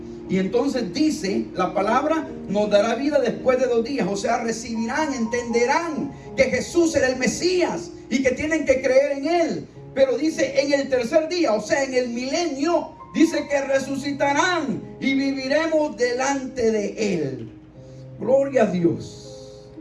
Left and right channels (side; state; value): both; identical; correlation 1.00